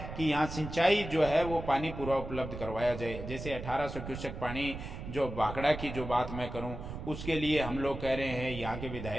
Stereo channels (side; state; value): right; noise; rumble, 9 dB below the sound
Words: कि यहाँ सिंचाई जो है वो पानी पूरा उपलब्ध करवाया जाए। जैसे 1800 क्यूसेक पानी जो भाखड़ा की जो बात मैं करूँ उसके लिए हम लोग कह रहे हैं, यहाँ के